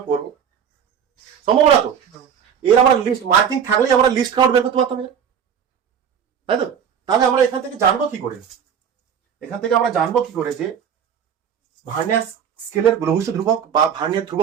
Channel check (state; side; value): quieter; left; 8.0 dB